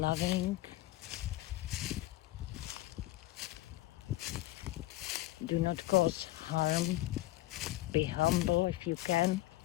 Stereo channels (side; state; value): right; quieter; 17.0 dB